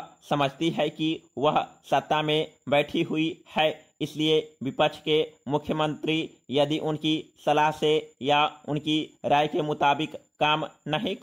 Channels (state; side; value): identical; both; correlation 1.00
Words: समझती है कि वह सत्ता में बैठी हुई है, इसलिए विपक्ष के मुख्यमंत्री यदि उनकी सलाह से या उनकी राय के मुताबिक काम नहीं